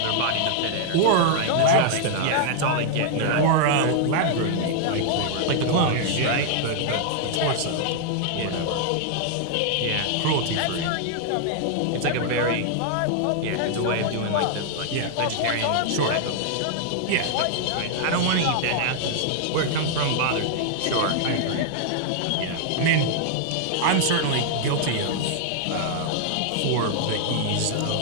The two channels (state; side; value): different; both; correlation -0.01